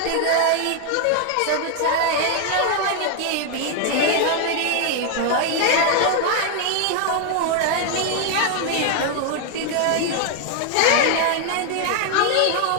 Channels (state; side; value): different; both; correlation 0.00